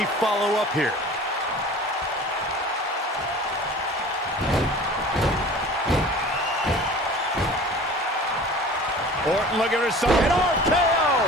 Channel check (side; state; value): both; normal; correlation 0.42